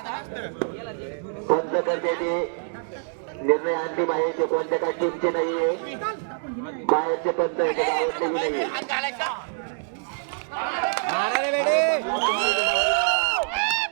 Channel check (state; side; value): silent; left; 62 dB below the other